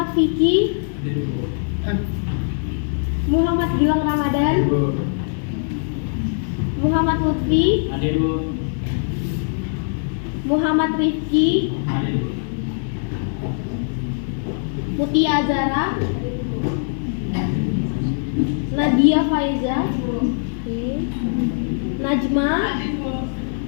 Vicky, Muhammad Gilang Ramadan, Muhammad Lutfi, Hadir Bu. Muhammad Rifki, Hadir Bu. Mutia Azara, Nadia Faiza, oke, Najma,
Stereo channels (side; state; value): right; silent; 65 dB below the other